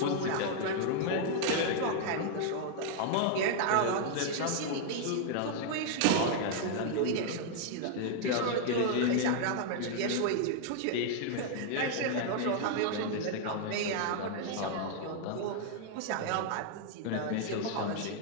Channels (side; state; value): both; different; correlation 0.00